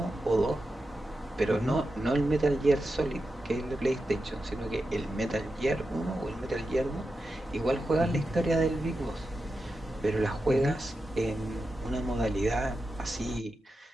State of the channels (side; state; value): both; normal; correlation 0.90